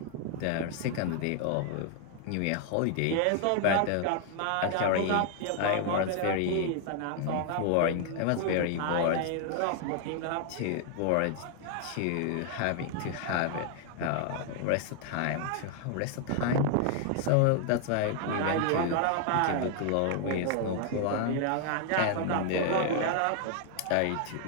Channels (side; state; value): both; different; correlation 0.00